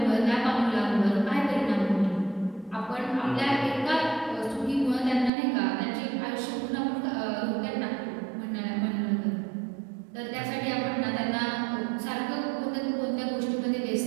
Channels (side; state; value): left; drops out; at 5.3 s